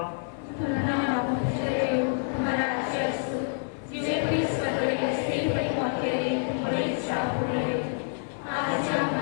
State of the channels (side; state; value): right; silent; 60 dB below the other